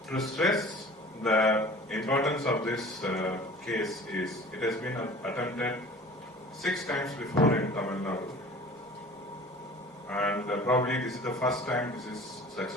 To stress the importance of this case is it has been attempted 6 times before in Tamil Nadu, and probably this is the first time this is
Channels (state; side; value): normal; both; correlation 0.44